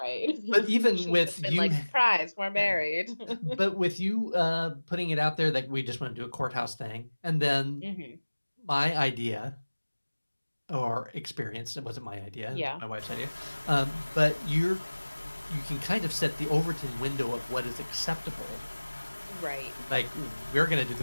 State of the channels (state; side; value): inverted; both; correlation -1.00